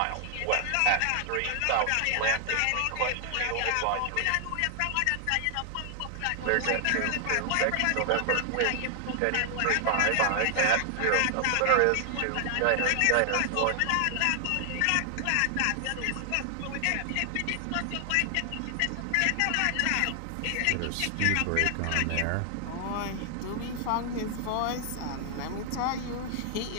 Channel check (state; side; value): different; both; correlation 0.00